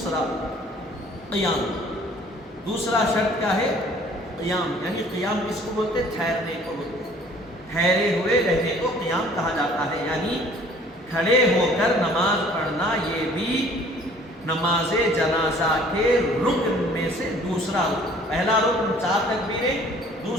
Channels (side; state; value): both; normal; correlation 0.54